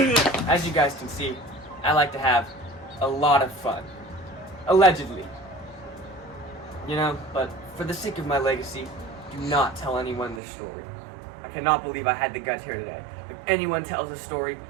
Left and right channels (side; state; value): left; drops out; at 10.4 s